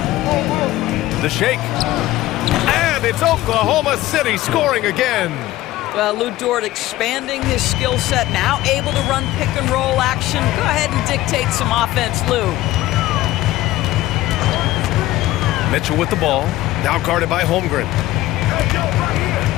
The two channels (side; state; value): right; quieter; 16.2 dB